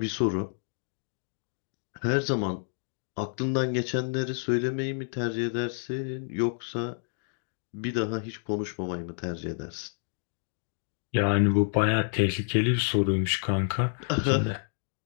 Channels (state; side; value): silent; right; digital silence